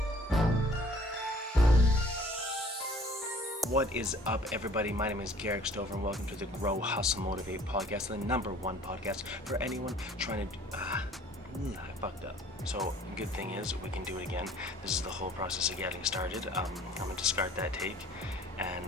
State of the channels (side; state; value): both; normal; correlation 0.53